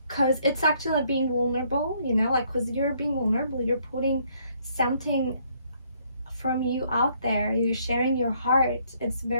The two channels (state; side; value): inverted; both; correlation -0.67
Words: because it's actually like being vulnerable, you know, like because you're being vulnerable, you're putting something from you out there, you're sharing your heart. It's a